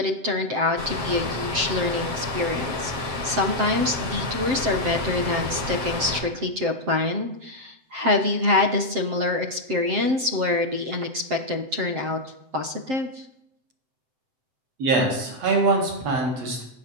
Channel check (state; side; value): late; left; 7.6 ms